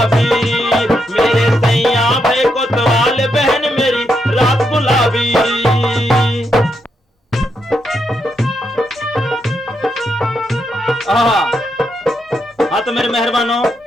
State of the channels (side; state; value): both; normal; correlation 0.81